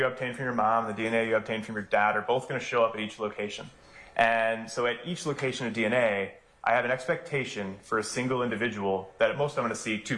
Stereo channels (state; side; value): identical; both; correlation 1.00